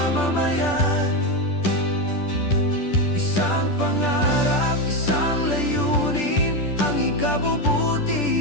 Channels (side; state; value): right; late; 10 ms